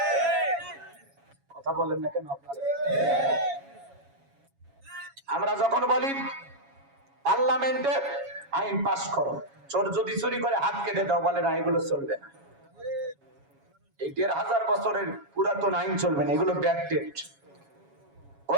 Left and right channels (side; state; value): left; late; 7.2 ms